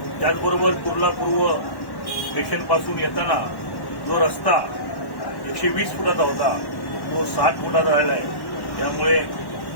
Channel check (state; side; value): late; right; 1.1 ms